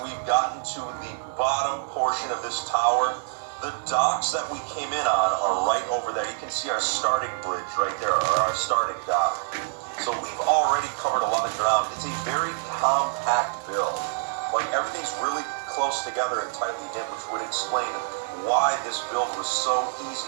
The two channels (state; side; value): silent; left; 60 dB below the other